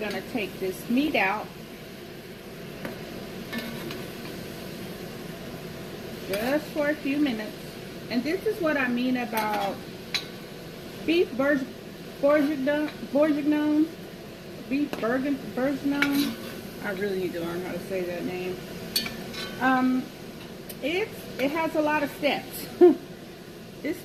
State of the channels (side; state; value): both; identical; correlation 1.00